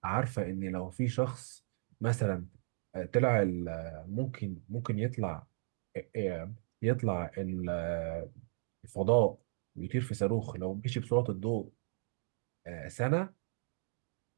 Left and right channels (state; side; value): silent; left; digital silence